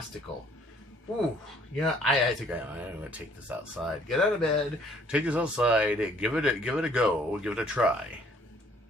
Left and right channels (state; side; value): normal; both; correlation 0.60